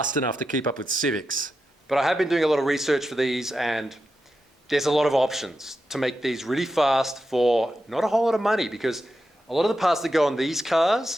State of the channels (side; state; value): both; normal; correlation 0.88